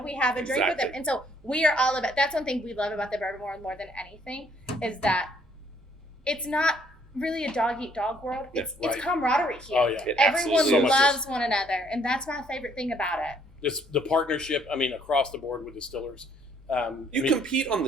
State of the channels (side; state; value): both; normal; correlation 0.65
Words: have a drink with Exactly. them. And so we are all about, that's one thing we love about the bourbon more than anything is that it's not really a dog-eat-dog world. It's right. camaraderie here. Oh, yeah. Everyone so loves one another, and that's my favorite thing about it. The partnership, I mean, across the board with distillers. You compete on